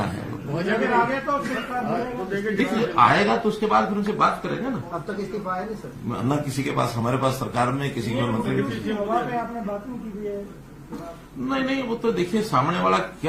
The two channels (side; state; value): both; identical; correlation 1.00